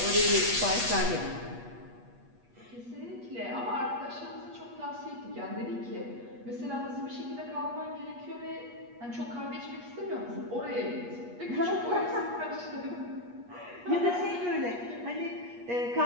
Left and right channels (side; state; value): left; late; 8.4 ms